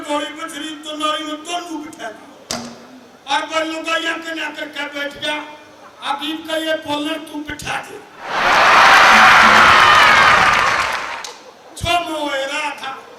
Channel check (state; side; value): identical; both; correlation 1.00